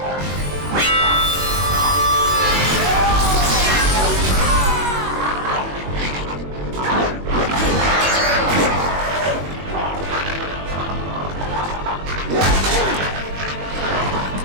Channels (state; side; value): late; left; 21 ms